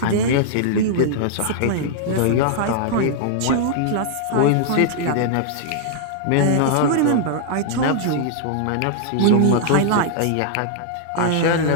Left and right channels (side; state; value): both; different; correlation -0.01